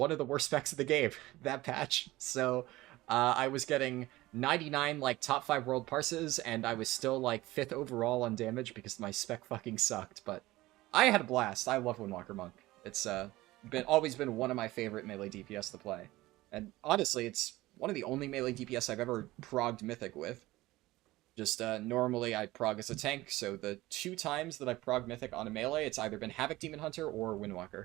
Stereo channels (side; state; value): left; quieter; 18.2 dB